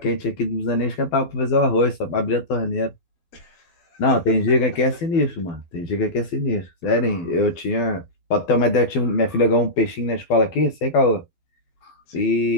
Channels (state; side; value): late; right; 12 ms